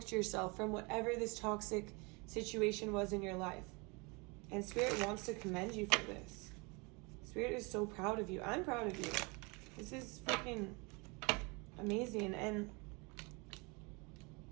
yourself from whatever this toxic situation was in your life. And Spirit wants to commend you for this. Spirit is so proud of you. I'm proud of you. This is freaking amazing. And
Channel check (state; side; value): quieter; left; 29.0 dB